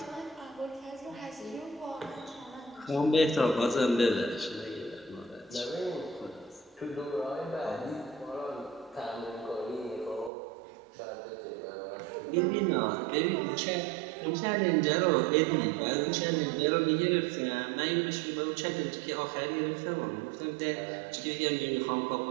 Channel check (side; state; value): left; drops out; at 10.3 s